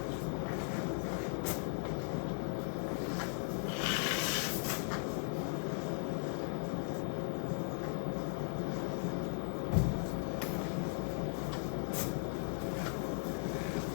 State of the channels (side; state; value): right; silent; 53 dB below the other